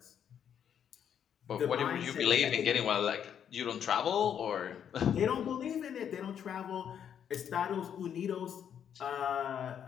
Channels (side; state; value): right; quieter; 8.7 dB